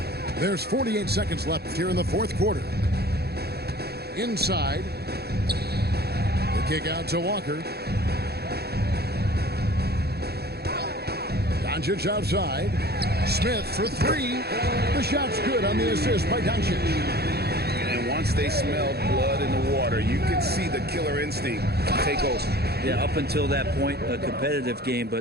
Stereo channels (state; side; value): late; left; 0.47 ms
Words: There's 48 seconds left here in the fourth quarter. Inside. The kick out to Walker. Doncic outside. Smith for three. The shot's good on the assist by Doncic. And once they smelled blood in the water, you could see the killer instinct take over. Yeah, up until that point, a competitive game,